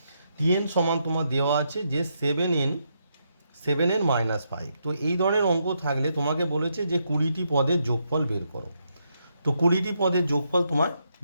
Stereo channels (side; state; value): both; inverted; correlation -0.79